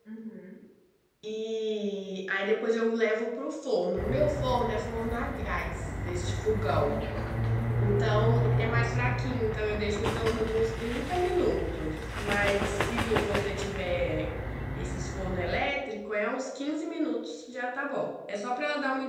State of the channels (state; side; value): identical; both; correlation 1.00